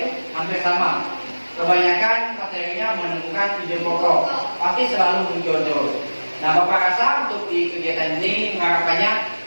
hampir sama. Kebanyakan materinya menemukan ide pokok, pasti selalu muncul terus. Nah, Bapak rasa untuk di kegiatan ini mengharapkannya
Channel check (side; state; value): both; inverted; correlation -1.00